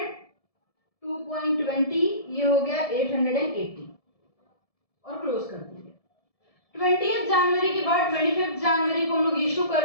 2.20, ये हो गया 880 और क्लोज कर देंगे। 20 जनवरी के बाद 25 जनवरी को हम लोग इशू कर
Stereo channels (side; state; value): right; late; 1.7 ms